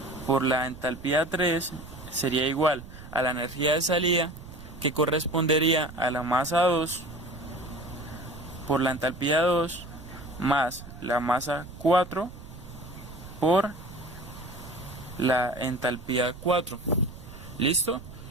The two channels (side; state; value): right; noise; rumble, 15 dB below the sound